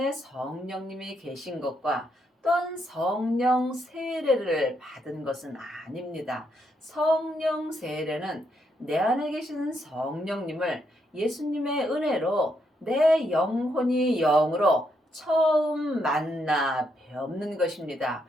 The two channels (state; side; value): normal; both; correlation 0.78